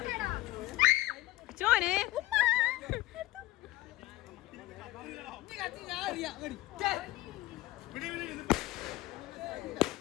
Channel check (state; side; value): quieter; right; 17.9 dB